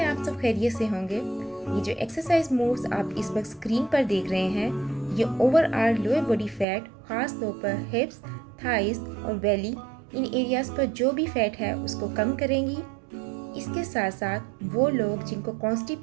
आप सब खैरियत से होंगे। ये जो एक्सरसाइज मूव्स आप इस वक्त स्क्रीन पर देख रहे हैं, ये ओवरऑल लोअर बॉडी फैट, ख़ास तौर पर हिप्स, थाइस और बेली, इन एरियाज़ पर जो भी फैट है उसको कम करेंगी। इसके साथ साथ वो लोग जिनको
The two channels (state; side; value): drops out; left; at 6.7 s